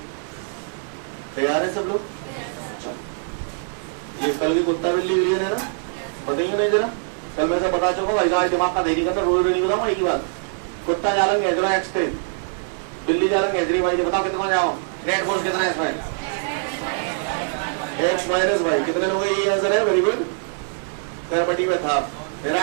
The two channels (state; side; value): silent; left; 58 dB below the other